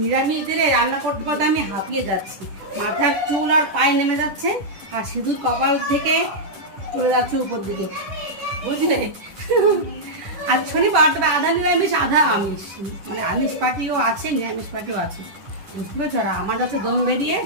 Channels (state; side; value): late; left; 10 ms